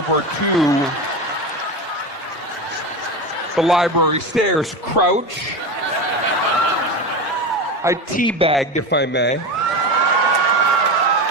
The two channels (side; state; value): both; normal; correlation 0.22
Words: to the library stairs, crouch. I teabagged, if I may.